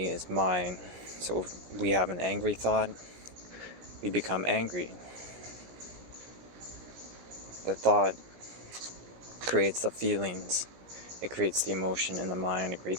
is mine. So if we have an angry thought, we become angry. The thought creates the feelings. It creates the emotion in the mind. It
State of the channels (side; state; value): left; late; 17 ms